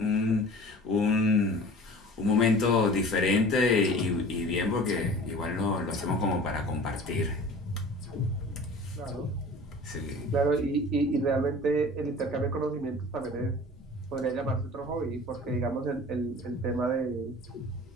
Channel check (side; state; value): both; normal; correlation 0.42